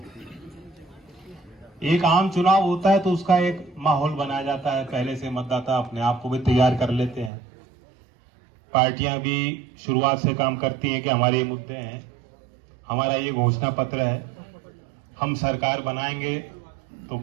एक आम चुनाव होता है तो उसका एक माहौल बनाया जाता है, पहले से मतदाता अपने आप को भी तैयार कर लेते हैं। पार्टियां भी शुरुआत से काम करती हैं कि हमारे ये मुद्दे हैं, हमारा ये घोषणा पत्र है, हम सरकार बनाएंगे तो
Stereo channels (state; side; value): drops out; left; at 7.3 s